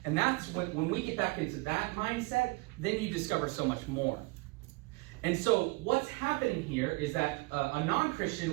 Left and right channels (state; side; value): quieter; left; 24.8 dB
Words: And that's when we get back into that mindset, then you discover so much more. And so what's happening here is that a